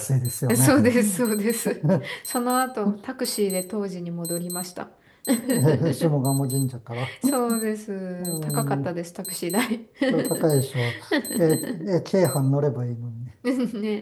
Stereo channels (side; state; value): both; identical; correlation 1.00